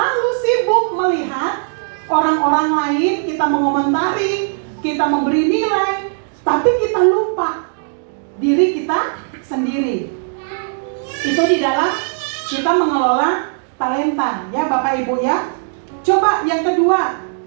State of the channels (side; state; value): left; silent; digital silence